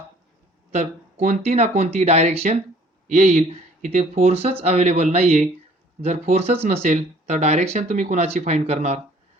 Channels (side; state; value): both; normal; correlation 0.55